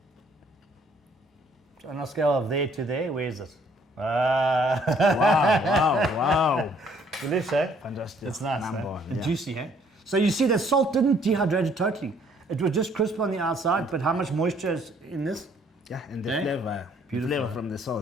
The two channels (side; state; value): both; normal; correlation 0.63